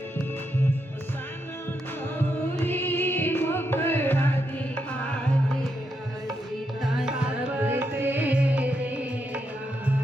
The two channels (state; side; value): normal; both; correlation 0.82